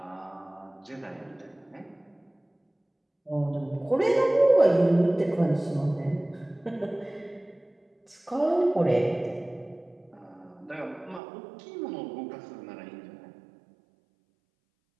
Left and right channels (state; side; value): drops out; left; at 11.2 s